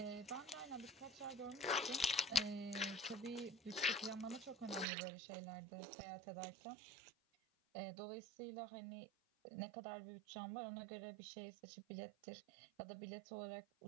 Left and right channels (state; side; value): drops out; left; at 4.9 s